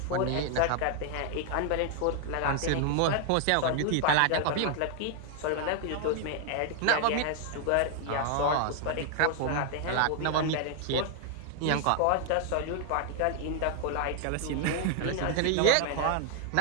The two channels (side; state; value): both; different; correlation 0.00